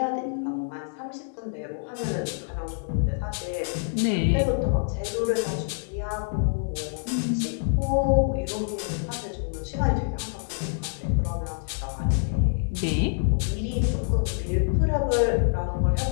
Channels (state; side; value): silent; right; digital silence